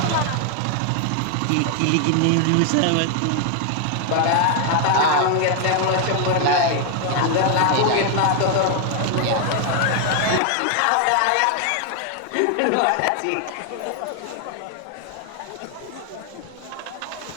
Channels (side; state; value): both; different; correlation 0.00